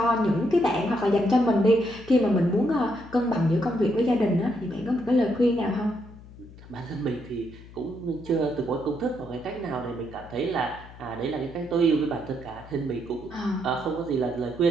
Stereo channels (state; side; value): noise; left; hum, 19 dB below the sound